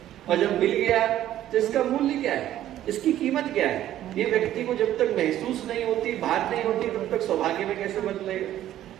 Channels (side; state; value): left; quieter; 12.6 dB